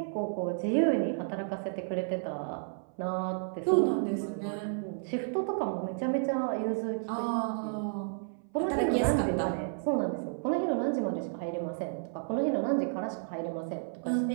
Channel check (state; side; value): silent; left; 56 dB below the other